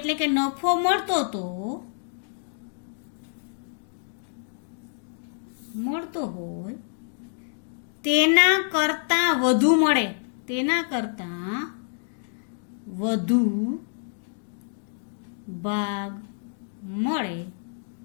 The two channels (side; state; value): right; silent; digital silence